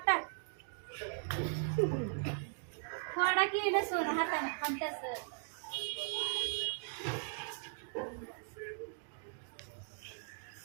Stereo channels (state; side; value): silent; left; digital silence